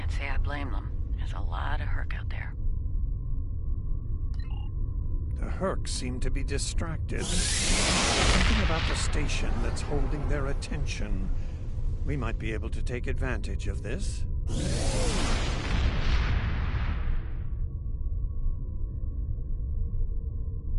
say I blame them. There's a lot of Herc out there. The Herc seem to be distracted. Something about the station that's holding their attention. We might be able to take advantage of this.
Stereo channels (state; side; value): identical; both; correlation 1.00